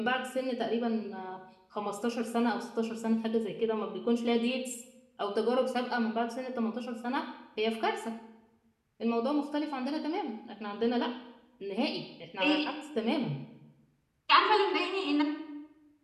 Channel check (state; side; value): identical; both; correlation 1.00